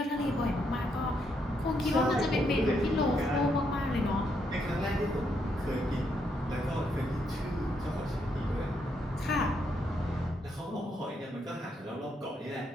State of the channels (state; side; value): normal; both; correlation 0.77